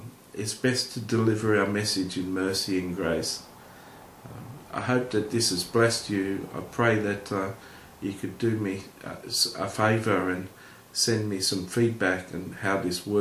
it's best to deliver our message in mercy and grace. I hope that this has blessed you. I pray that you could do me a favour and send me some feedback on how this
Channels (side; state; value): both; identical; correlation 1.00